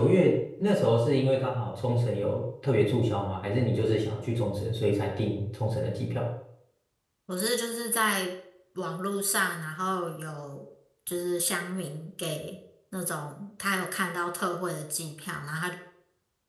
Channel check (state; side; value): identical; both; correlation 1.00